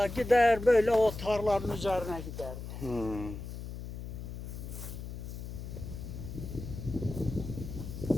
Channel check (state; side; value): noise; left; hum, 8 dB below the sound